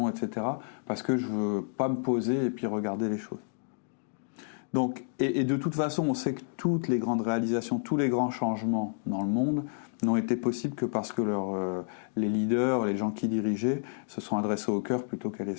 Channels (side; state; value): right; silent; digital silence